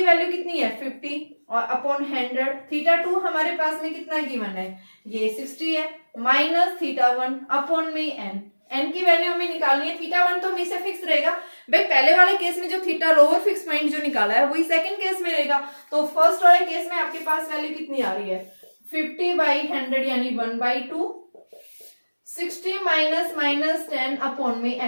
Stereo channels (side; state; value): both; inverted; correlation -1.00